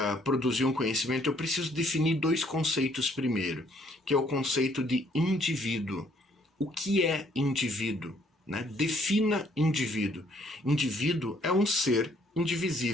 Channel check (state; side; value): normal; both; correlation 0.65